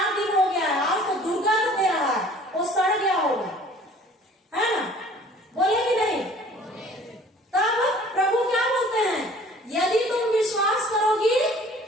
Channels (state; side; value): normal; both; correlation 0.51